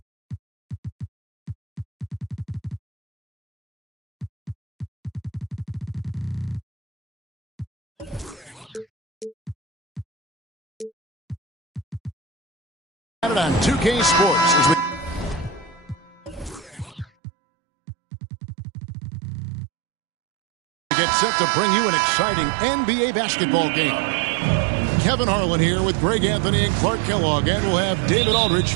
on 2K Sports as we get set to bring you an exciting NBA basketball game. Kevin Harlan here with Greg Anthony and Clark Kellogg, and we'll have David Aldridge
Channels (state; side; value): drops out; left; at 17.1 s